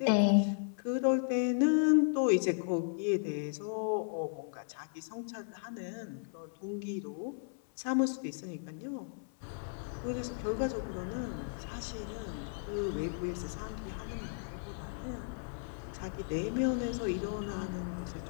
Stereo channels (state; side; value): silent; right; 54 dB below the other